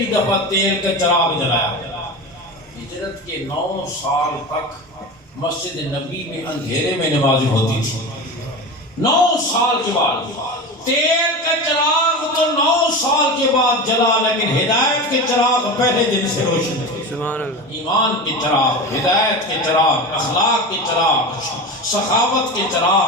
دفعہ تیل کا چراغ جلایا۔ ہجرت کے 9 سال تک مسجد نبی میں اندھیرے میں نماز ہوتی تھی۔ 9 سال کے بعد تیل کا چراغ تو 9 سال کے بعد جلا، لیکن ہدایت کے چراغ پہلے دن سے روشن تھے۔ ایمان کے چراغ، ہدایت کے چراغ، اخلاق کے چراغ، سخاوت کے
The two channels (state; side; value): normal; both; correlation 0.27